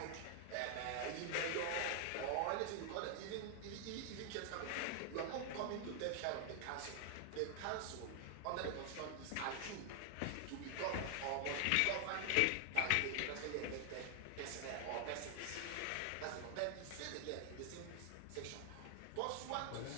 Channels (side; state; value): both; different; correlation 0.00